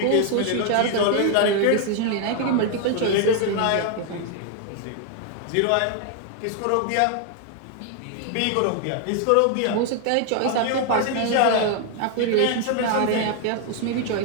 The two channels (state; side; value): different; both; correlation 0.00